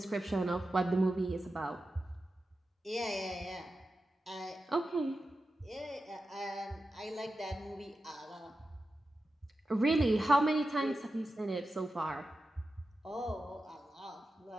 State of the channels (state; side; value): normal; both; correlation 0.92